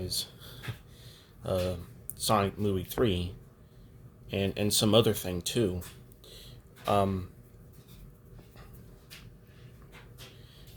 uh, Sonic Movie 3, and some other thing too. Um,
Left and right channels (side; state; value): both; identical; correlation 1.00